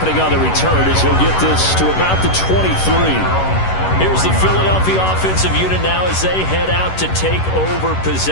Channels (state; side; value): late; right; 11 ms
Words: on the return as he'll get this to about the 23. Here's the Philadelphia offensive unit now as they head out to take over